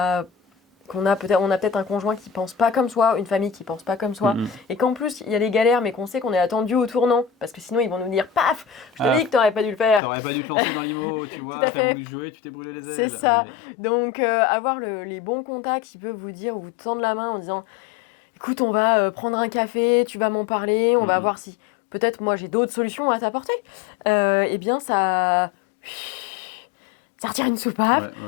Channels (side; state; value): right; drops out; at 10.0 s